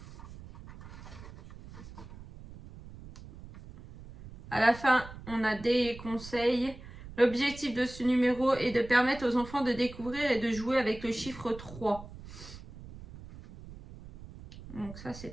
À la fin, on a des conseils. L'objectif de ce numéro est de permettre aux enfants de découvrir et de jouer avec le chiffre 3. Donc ça, c'est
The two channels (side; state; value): right; noise; rumble, 16 dB below the sound